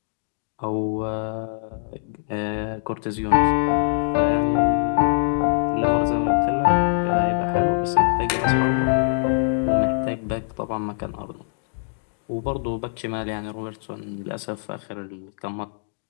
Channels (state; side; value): silent; right; digital silence